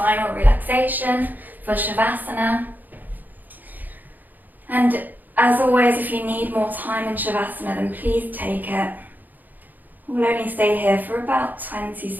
relaxation, for Shavasana. And as always, if you need more time in Shavasana, then please take it. We'll only stay here for about 20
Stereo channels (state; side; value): late; left; 0.085 ms